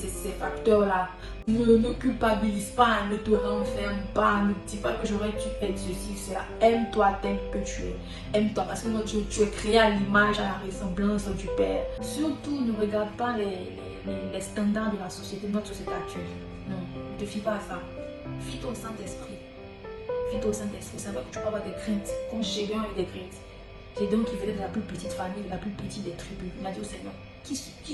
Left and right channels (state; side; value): identical; both; correlation 1.00